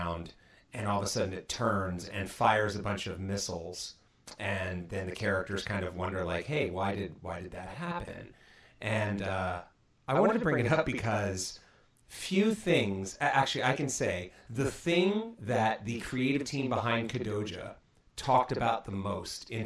and all of a sudden it turns and fires a bunch of missiles. And then the characters kind of wonder, like, hey, why did that happen? And I wanted to bring it up because few things, actually I can say, the thing that the creative team behind Kodoja talked about the most in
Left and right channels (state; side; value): identical; both; correlation 1.00